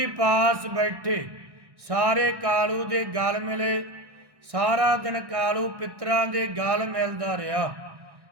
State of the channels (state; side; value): late; left; 1.1 ms